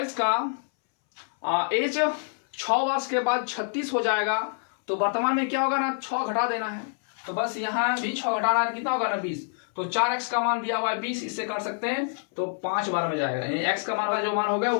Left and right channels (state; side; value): silent; right; 60 dB below the other